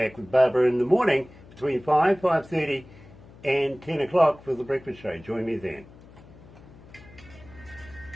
with Barbara in the morning between 5:30 and 10 o'clock for the breakfast show. Join me then.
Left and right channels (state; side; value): noise; left; hum, 21 dB below the sound